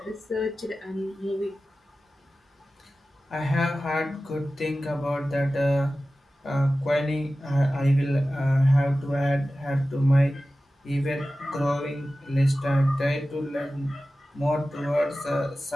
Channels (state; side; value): normal; both; correlation 0.95